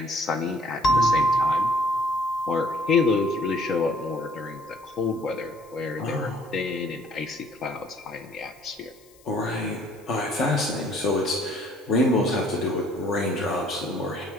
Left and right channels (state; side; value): noise; left; hiss, 28 dB below the sound